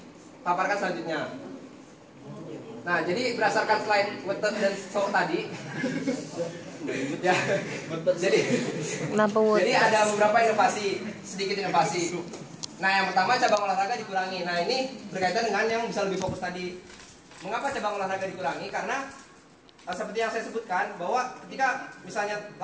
selanjutnya. Nah jadi berdasarkan slide Wetet dan So tadi ya, jadi ada beberapa inovasi, sedikit inovasi. Nah yang pertama cabang olahraga dikurangi. Nah ini berkaitan dengan yang bisa lebih fokus tadi. Mengapa cabang olahraga dikurangi? Karena seperti yang saya sebutkan bahwa ketika misalnya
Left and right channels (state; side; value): identical; both; correlation 1.00